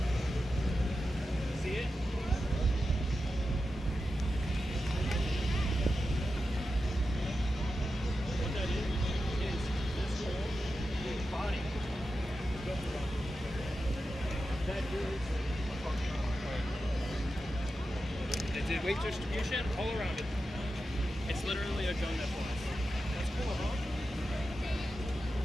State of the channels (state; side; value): normal; both; correlation 0.91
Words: See it? What that is this whole body. That is. It did weight distribution all around it. It's literally a gun that flies. That's cool, huh?